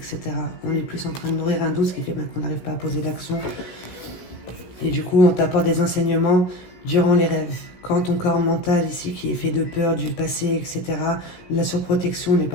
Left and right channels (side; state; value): right; late; 17 ms